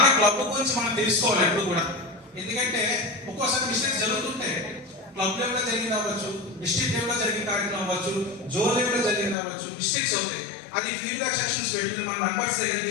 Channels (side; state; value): right; drops out; at 9.3 s